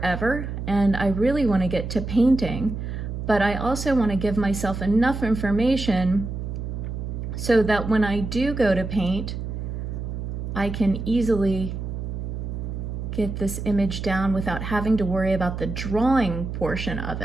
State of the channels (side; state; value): right; noise; hum, 5 dB below the sound